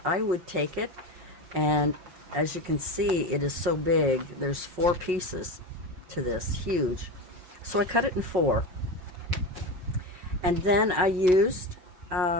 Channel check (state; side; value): late; left; 5.5 ms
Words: I would take it, and as you can see, it is so big. There's 4 pieces to this, huge. So I cut it in 4. And then I used